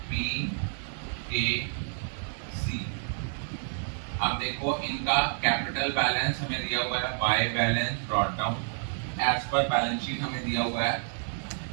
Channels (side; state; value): left; silent; digital silence